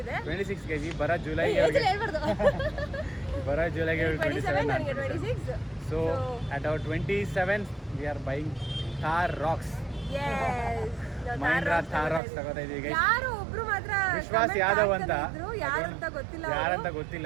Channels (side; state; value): left; drops out; at 12.2 s